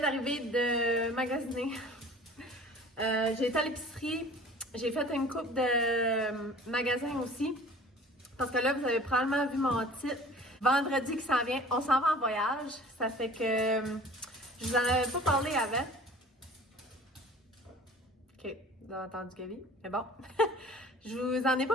de magasiner. J'ai été à l'épicerie, j'ai fait une coupe de magasins aussi, parce que là, vous avez probablement vu mon titre. Vendredi qui s'en vient, on s'en va en voyage. Ça fait que je vous en avais pas parlé avant. Ok, vous avez entendu Gabi, mais bon. Je vous en ai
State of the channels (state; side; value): normal; both; correlation 0.45